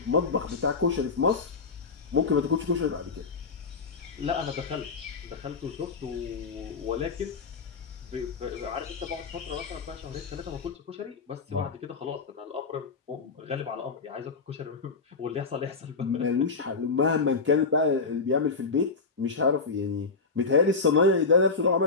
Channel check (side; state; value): right; quieter; 4.4 dB